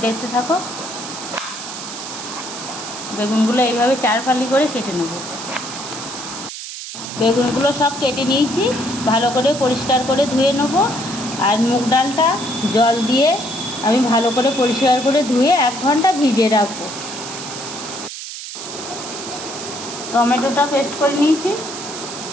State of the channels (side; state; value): right; noise; hiss, 9 dB below the sound